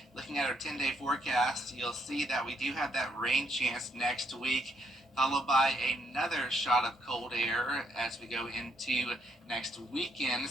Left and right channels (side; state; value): both; normal; correlation 0.73